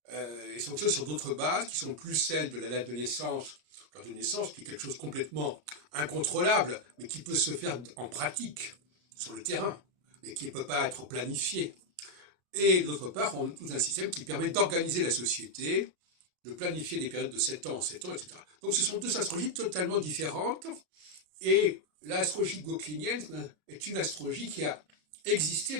et ça fonctionne sur d'autres bases qui sont plus celles de la date de naissance, l'heure de naissance, qui est quelque chose complètement incontrôlable, mais qui peut se faire en pratique, sur le terrain, mais qui ne peut pas être planifié. Et d'autre part, on a tout un système qui permet d'organiser la société, de planifier des périodes de 7 ans en 7 ans, etc. Donc ce sont deux astrologies totalement différentes, et l'astrologie gauquelinienne est une astrologie qui a existé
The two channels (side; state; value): left; late; 34 ms